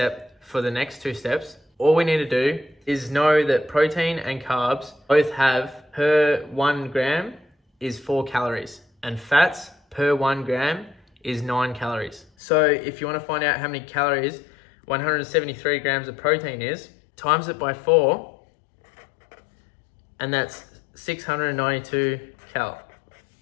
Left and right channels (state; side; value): drops out; right; at 12.2 s